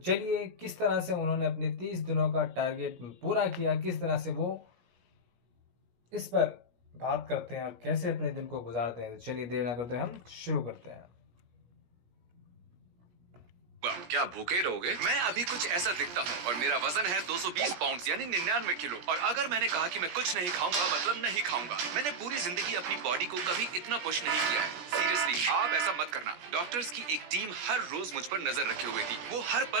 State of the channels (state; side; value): late; left; 17 ms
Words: किस तरह से उन्होंने अपने 30 दिनों का टारगेट पूरा किया, किस तरह से वो इस पर बात करते हैं और कैसे अपने दिन को गुजारते हैं। तो चलिए देर ना करते हम शुरू करते हैं। क्या भूखे रहोगे? मैं अभी कुछ ऐसा दिखता हूँ और मेरा वजन है 220 पाउंड यानी 99 किलो। और अगर मैंने कहा कि मैं कुछ नहीं खाऊंगा मतलब नहीं खाऊंगा। मैंने पूरी जिंदगी अपनी बॉडी को कभी इतना पुश नहीं किया है। सीरियसली आप ऐसा मत करना। डॉक्टर्स की एक टीम हर रोज मुझ पर नजर रखे हुए थी। वो हर